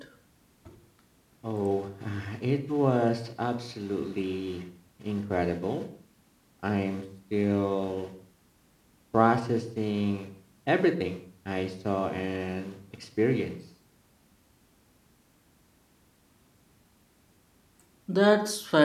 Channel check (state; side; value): identical; both; correlation 1.00